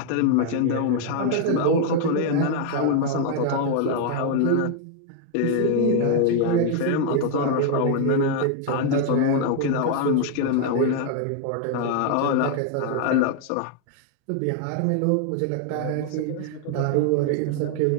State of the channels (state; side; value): different; both; correlation 0.00